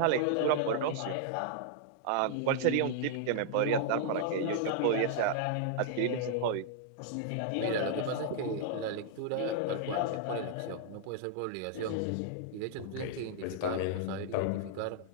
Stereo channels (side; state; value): both; different; correlation -0.01